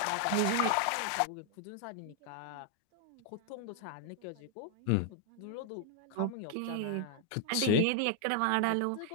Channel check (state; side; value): different; both; correlation 0.00